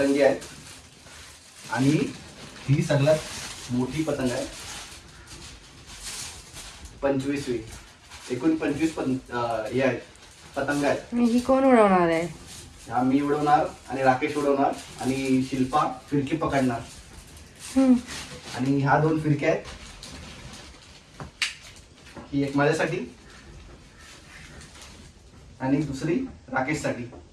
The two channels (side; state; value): both; identical; correlation 1.00